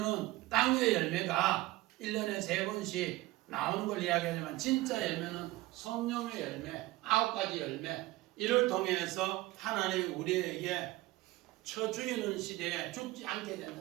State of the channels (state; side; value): quieter; left; 18.6 dB